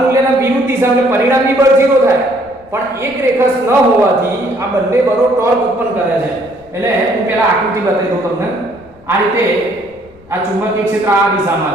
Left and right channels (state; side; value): noise; left; rumble, 27 dB below the sound